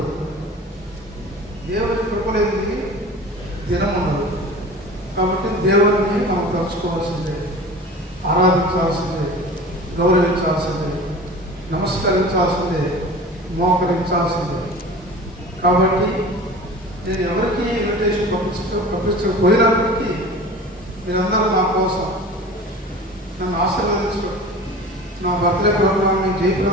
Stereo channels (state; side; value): normal; both; correlation 0.38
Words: దేవుడి కృప లేనిది దినం ఉండదు. కాబట్టి దేవుడిని మనం తలుచుకోవాల్సిందే, ఆరాధించాల్సిందే, గౌరవించాల్సిందే, నమస్కరించాల్సిందే, మోకరించాల్సిందే. కాబట్టి నేను ఎవరికి ఇన్విటేషన్ పంపించకపోయినప్పటికీ మీరందరూ నా కోసం నన్ను ఆశీర్వదించడం, నా బర్త్డే ప్రోగ్రామ్ని